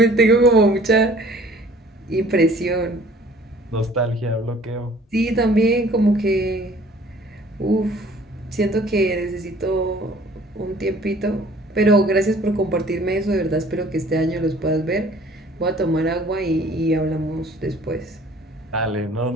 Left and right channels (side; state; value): both; normal; correlation 0.53